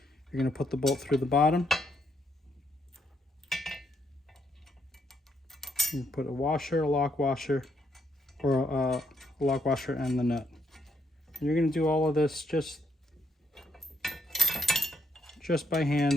You're going to put the bolt through the bottom. You put a washer, a lock washer, or a lock washer and the nut. And you're going to do all of this just by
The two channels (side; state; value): both; normal; correlation 0.74